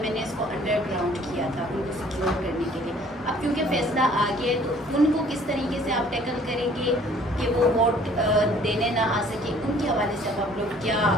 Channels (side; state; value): both; normal; correlation 0.56